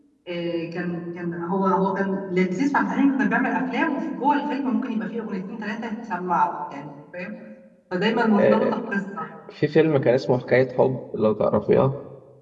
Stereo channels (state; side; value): identical; both; correlation 1.00